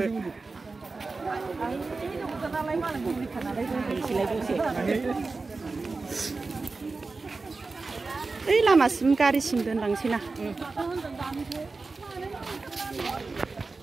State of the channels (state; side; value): quieter; left; 3.9 dB